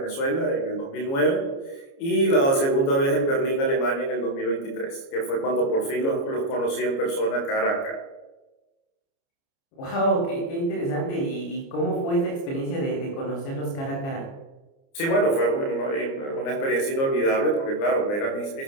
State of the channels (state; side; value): late; right; 29 ms